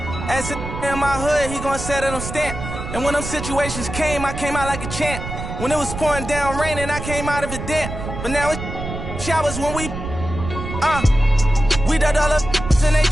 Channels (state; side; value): noise; right; rumble, 7 dB below the sound